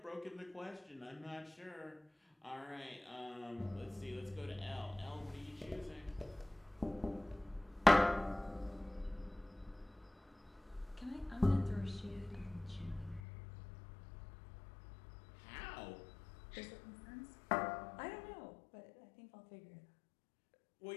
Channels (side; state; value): right; drops out; at 13.2 s